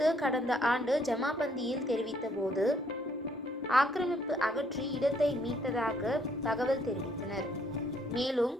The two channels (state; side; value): normal; both; correlation 0.67